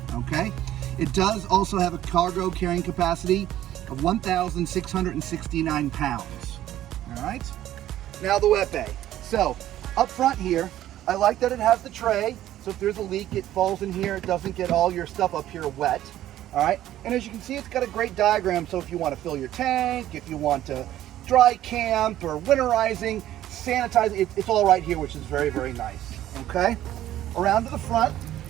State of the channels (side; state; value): left; quieter; 13.1 dB